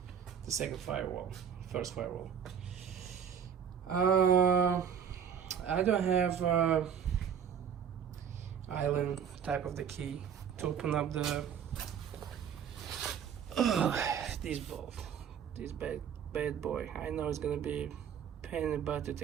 second firewall, first firewall. I don't have island type of the key to open up the this bolt, this bad boy. I know it's gonna be pain in the butt to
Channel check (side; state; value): left; quieter; 8.0 dB